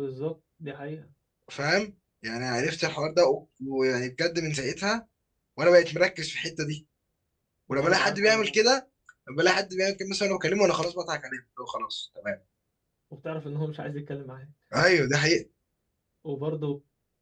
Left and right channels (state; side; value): identical; both; correlation 1.00